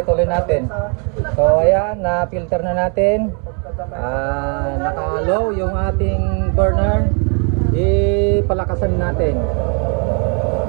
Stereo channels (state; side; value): quieter; left; 36.5 dB